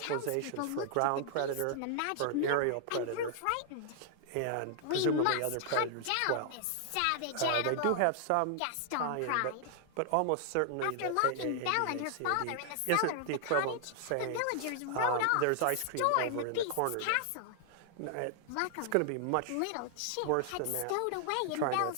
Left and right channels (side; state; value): both; different; correlation -0.01